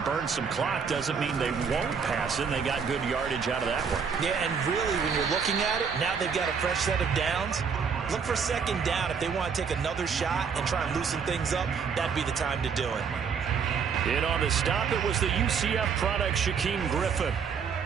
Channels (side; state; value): left; quieter; 6.2 dB